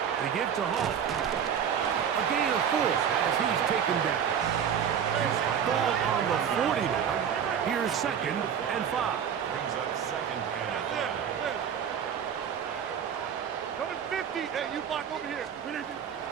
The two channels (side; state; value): left; quieter; 8.1 dB